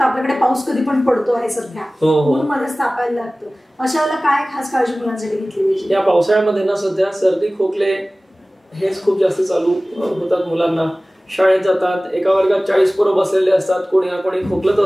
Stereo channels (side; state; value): both; normal; correlation 0.98